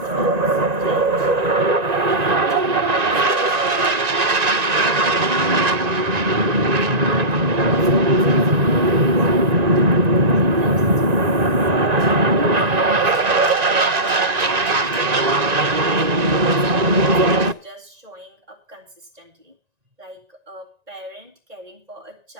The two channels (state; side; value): late; left; 1.9 ms